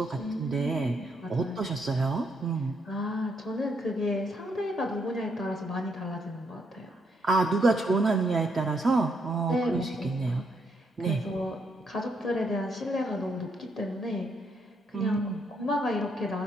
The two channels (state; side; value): normal; both; correlation 0.75